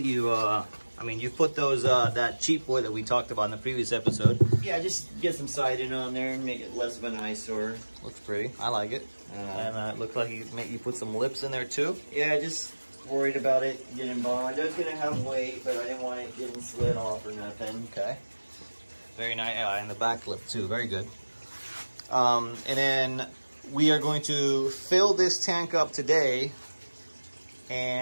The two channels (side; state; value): both; inverted; correlation -1.00